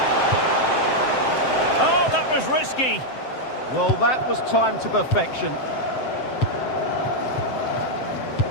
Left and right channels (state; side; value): late; right; 7.7 ms